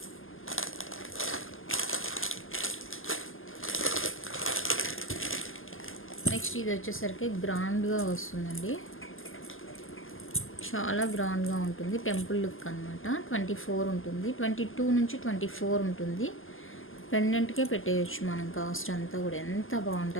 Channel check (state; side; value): late; right; 0.59 ms